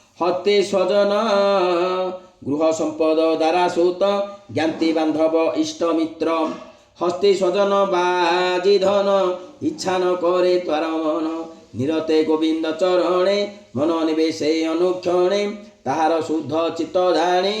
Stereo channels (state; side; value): identical; both; correlation 1.00